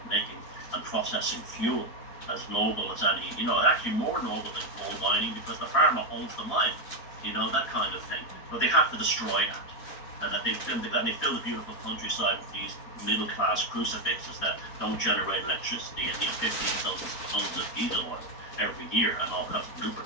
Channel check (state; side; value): late; right; 4.4 ms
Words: and processing fuel, as noble as any, actually more noble than coal mining, because the farmer owns the mine, that kind of thing. But they have to destroy that. And that they fill the beautiful countryside with these middle class crucifixes that don't generate electricity and need 15,000 tons of diesel oil every year and all kinds of